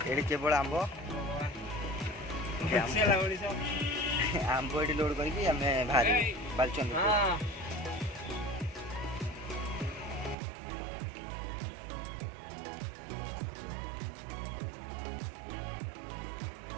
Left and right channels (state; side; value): drops out; left; at 10.4 s